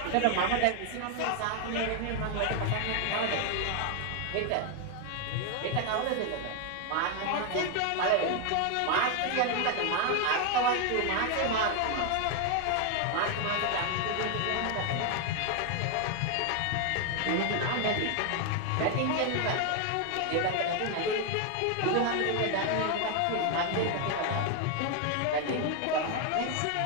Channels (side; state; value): both; different; correlation 0.01